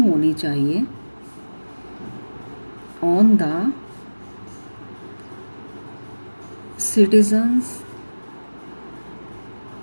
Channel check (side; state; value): both; inverted; correlation -1.00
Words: चाहिए ऑन द सिटीजन,